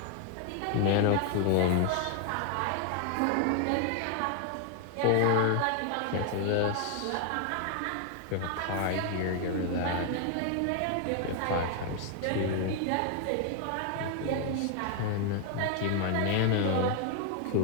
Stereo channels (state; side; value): different; both; correlation 0.00